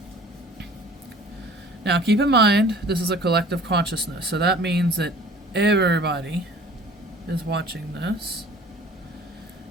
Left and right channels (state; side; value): normal; both; correlation 0.48